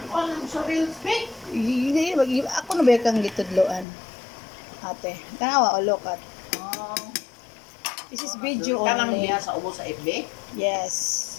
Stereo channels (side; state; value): right; drops out; at 3.9 s